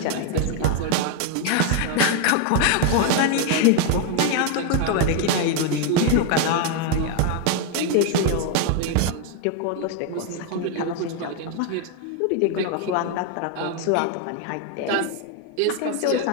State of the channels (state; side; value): different; both; correlation 0.01